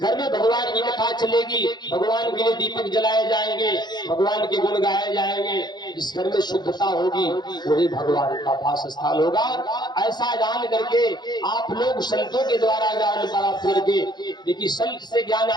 में भगवान की कथा चलेगी, भगवान के लिए दीपक जलाए जाएंगे, भगवान के गुण गाए जाएंगे, जिस घर में शुद्धता होगी वही भगवान का वास स्थान होगा। ऐसा जान करके आप लोग संतों के द्वारा ज्ञान प्राप्त करके देखिए, संत से ज्ञान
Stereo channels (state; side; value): late; right; 0.21 ms